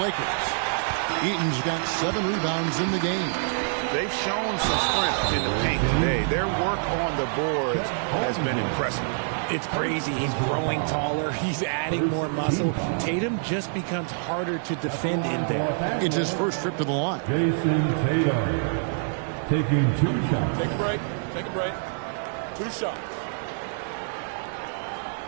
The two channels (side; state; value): left; silent; digital silence